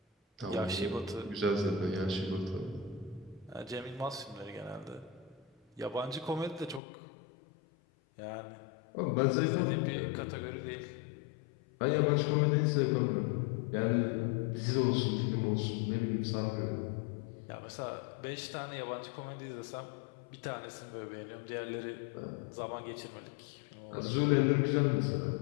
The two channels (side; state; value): right; drops out; at 6.8 s